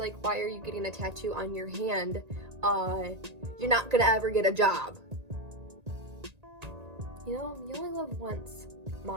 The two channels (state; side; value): late; left; 1.9 ms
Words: why are you getting a tattoo on your hand? You're not gonna ever get a job. You know, you only live once,